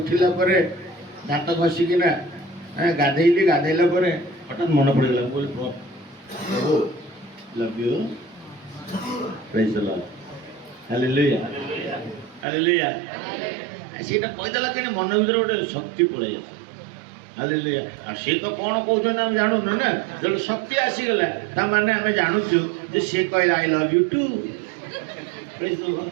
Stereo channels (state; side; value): drops out; left; at 12.5 s